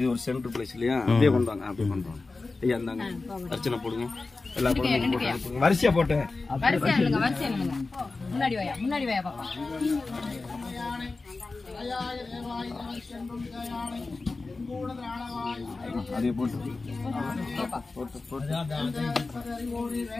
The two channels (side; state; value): right; quieter; 3.7 dB